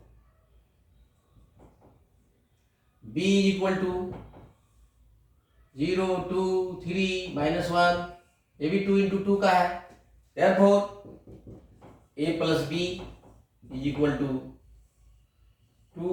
b इज इक्वल टू 0, 2, 3, -1, ये भी 2 into 2 का है। therefore a plus b is equal to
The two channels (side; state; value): both; identical; correlation 1.00